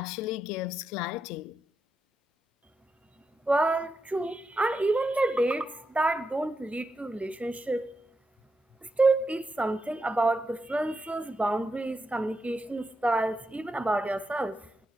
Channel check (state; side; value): normal; both; correlation 0.86